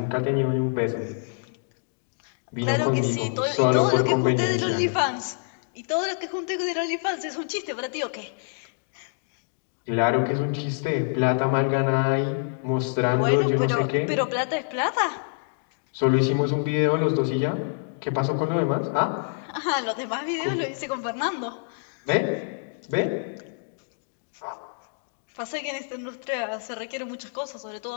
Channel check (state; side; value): silent; right; digital silence